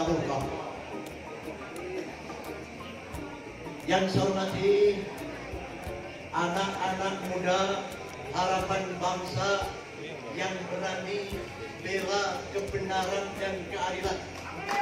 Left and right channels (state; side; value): identical; both; correlation 1.00